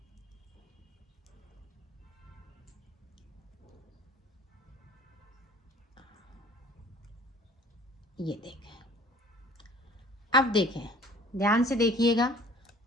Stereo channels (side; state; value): both; normal; correlation 0.50